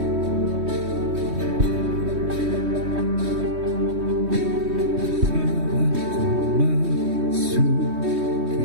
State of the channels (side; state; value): left; late; 3.2 ms